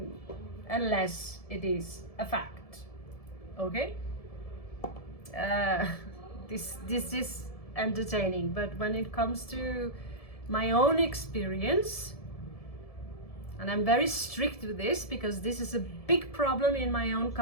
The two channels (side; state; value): right; late; 1.7 ms